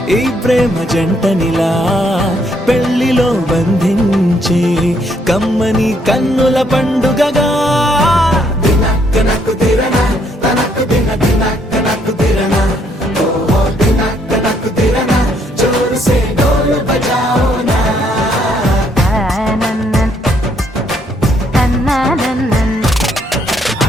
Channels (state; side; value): normal; both; correlation 0.70